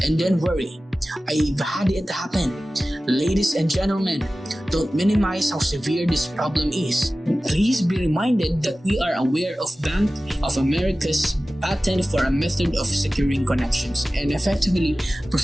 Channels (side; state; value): both; normal; correlation 0.96